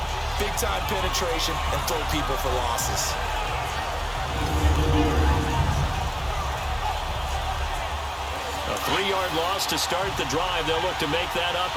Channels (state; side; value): identical; both; correlation 1.00